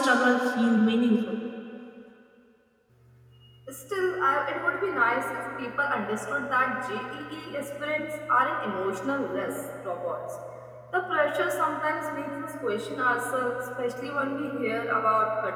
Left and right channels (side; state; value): both; identical; correlation 1.00